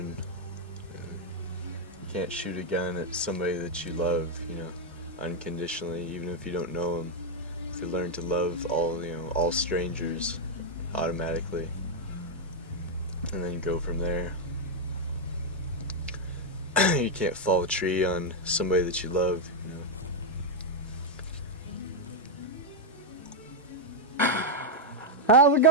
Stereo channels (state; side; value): normal; both; correlation -0.01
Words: You can't shoot a gun at somebody that you love, you know, unconditionally, even if you don't know them. If you learn to love all strangers automatically, and then go from there. You can't fall a tree on somebody that you love, you know. How's it